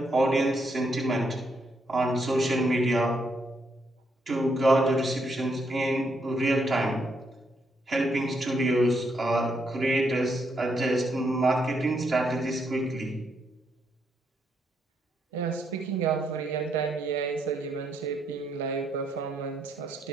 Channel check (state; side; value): normal; both; correlation 0.77